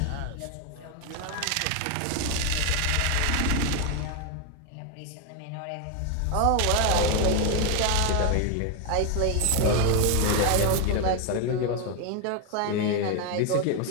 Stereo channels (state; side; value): different; both; correlation 0.01